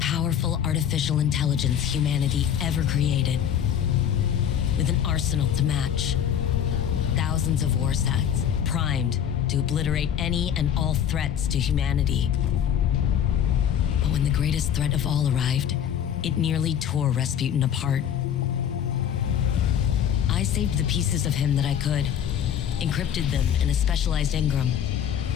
artificial intelligence humanity ever created. With an arsenal to match. Thousands of war sets, primed to obliterate any and all threats to humanity. But when the greatest threat of all arrived, it nearly tore Rasputin apart. I saved the pieces of him that I could, encrypted them in a specialized engram.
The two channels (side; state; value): right; quieter; 9.1 dB